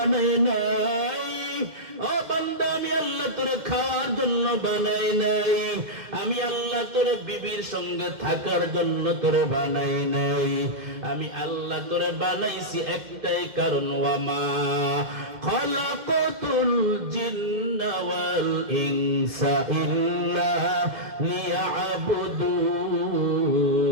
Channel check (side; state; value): left; late; 2.1 ms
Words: নাই। ও বান্দা আমি আল্লাহ তোরে খাওয়ার জন্য বানাই নাই, আমি আল্লাহ তোরে বিবির সঙ্গে থাকার জন্য তোরে বানাই নাই। আমি আল্লাহ তোরে বানাইছি একটাই কারণ, ওয়ামা খালাকাতুল জিন্না ওয়াল ইনসা ইল্লা লিয়াবুদুন।